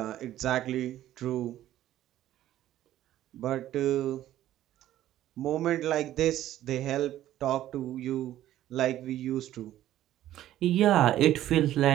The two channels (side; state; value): left; quieter; 13.2 dB